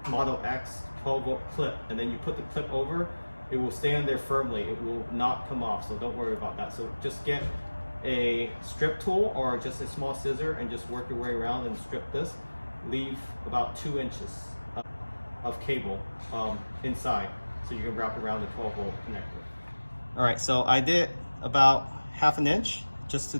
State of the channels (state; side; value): inverted; both; correlation -1.00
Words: Model X 12-volt clip. And then you put the clip over, it will stay on there firmly. It will not come off, so don't worry about that. So just get a strip tool or just a small scissor and just work your way around and strip this. Leave about 2 inches of cable inside, so you can wrap around the 12-volt connector. All right, so I did about ½ an inch just